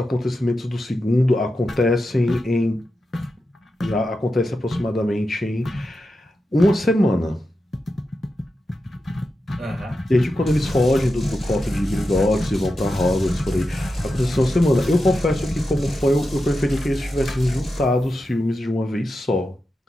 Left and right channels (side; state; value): both; normal; correlation 0.89